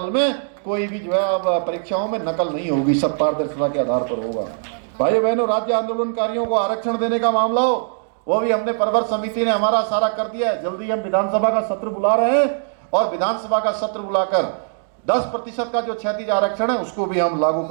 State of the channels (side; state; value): left; silent; digital silence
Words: में कोई भी जो है अब परीक्षाओं में नकल नहीं होगी, सब पारदर्शिता के आधार पर होगा। भाइयों बहनों, राज्य आंदोलनकारियों को आरक्षण देने का मामला हो, वो भी हमने प्रवर समिति ने हमारा सारा कर दिया है। जल्दी हम विधानसभा का सत्र बुला रहे हैं और विधानसभा का सत्र बुलाकर 10% का जो क्षैतिज आरक्षण है उसको भी हम लागू